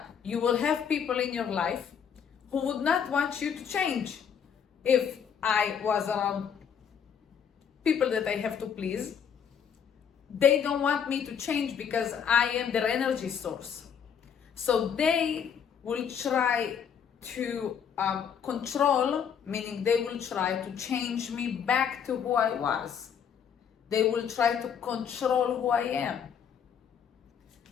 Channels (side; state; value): right; quieter; 7.7 dB